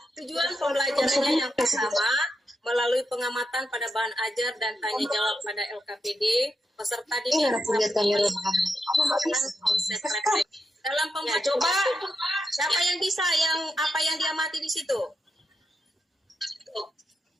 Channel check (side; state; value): both; normal; correlation 0.84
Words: tujuan pembelajarannya yang pertama, melalui pengamatan pada bahan ajar dan tanya jawab pada LKPD, peserta didik konsep refleksi. Dalam pembelajaran, coba siapa yang bisa yang apa yang diamati di situ?